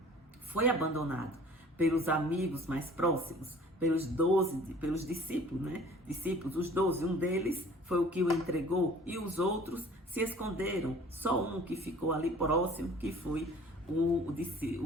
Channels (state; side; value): normal; both; correlation 0.49